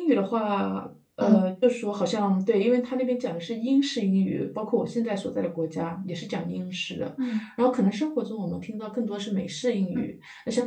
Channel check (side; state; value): both; identical; correlation 1.00